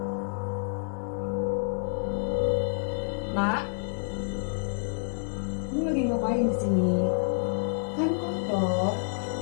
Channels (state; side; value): silent; right; 57 dB below the other